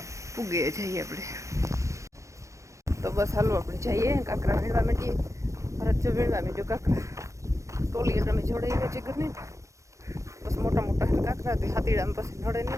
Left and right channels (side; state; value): left; late; 0.15 ms